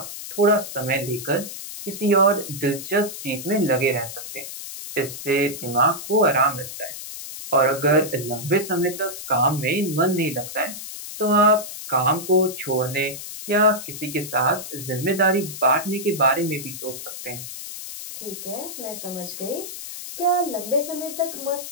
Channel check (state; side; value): noise; left; hiss, 10 dB below the sound